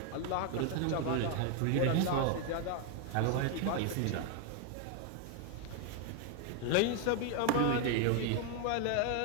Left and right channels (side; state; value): both; different; correlation 0.01